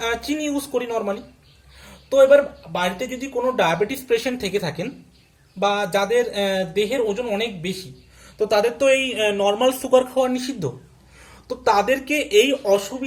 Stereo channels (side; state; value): both; identical; correlation 1.00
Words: চিনি ইউজ করি নর্মালি। তো এবার বাড়িতে যদি কোনো ডায়াবেটিস পেশেন্ট থেকে থাকেন বা যাদের দেহের ওজন অনেক বেশি, তো তাদের তো এই নর্মাল সুগার খাওয়া নিষিদ্ধ। তো তাদেরকে এই